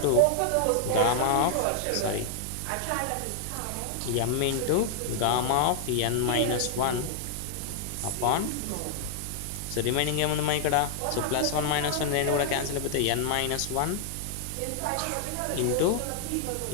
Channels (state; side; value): different; both; correlation 0.00